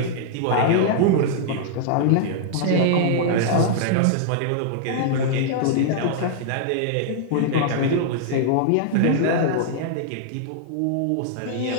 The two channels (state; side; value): different; both; correlation -0.01